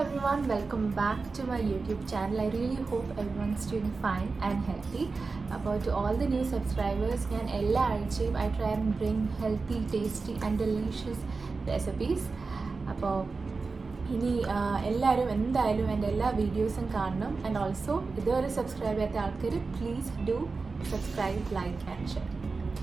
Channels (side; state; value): left; quieter; 4.2 dB